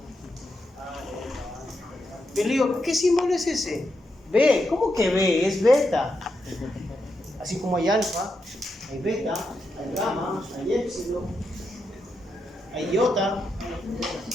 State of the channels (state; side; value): normal; both; correlation 0.84